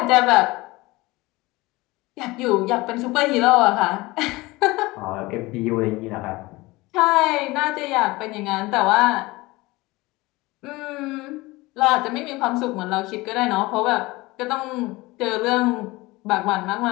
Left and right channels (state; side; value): quieter; right; 21.3 dB